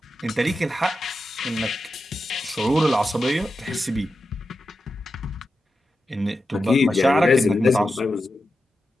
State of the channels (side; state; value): both; normal; correlation 0.90